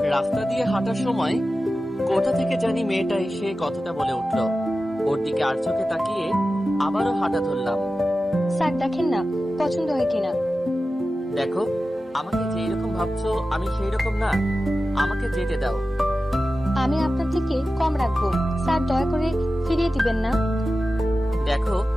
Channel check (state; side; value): normal; both; correlation 0.94